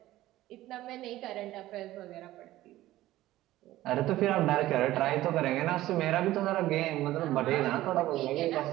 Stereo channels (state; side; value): quieter; left; 15.6 dB